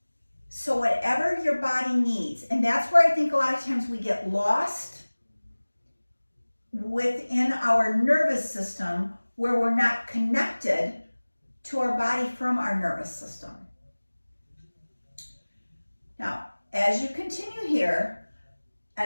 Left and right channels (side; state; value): both; inverted; correlation -1.00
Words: So whatever your body needs, and that's where I think a lot of times we get lost within our nervous system, where we're not connected to our body from our nervous system. Now, as you continue here,